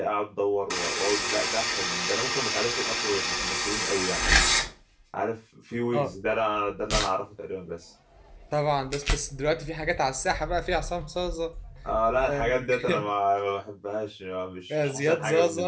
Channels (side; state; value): both; identical; correlation 1.00